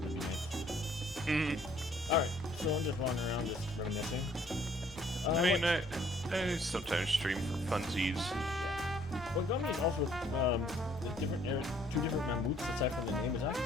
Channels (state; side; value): normal; both; correlation 0.61